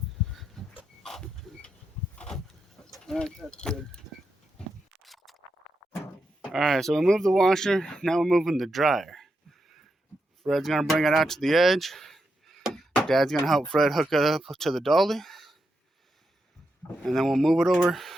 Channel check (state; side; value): normal; both; correlation 0.85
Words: That's good. Alright, so we moved the washer. Now we're moving the dryer. Fred's going to bring it out to the edge. Dad's going to help Fred hook it up to the dolly. And then we'll move it over